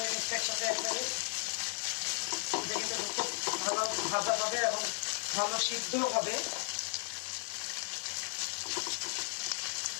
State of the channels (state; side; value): quieter; right; 39.1 dB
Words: নিচ্ছি একসাথে একবারে। এটা কিন্তু খুব ভালো ভাজা হবে এবং ভালো সিদ্ধ হবে।